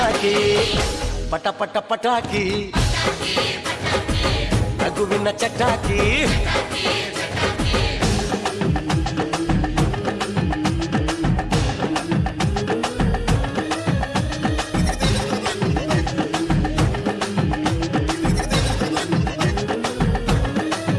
ಪಟ ಪಟ ಪಟಾಕಿ ನಗುವಿನ ಚಟಾಕಿ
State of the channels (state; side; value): identical; both; correlation 1.00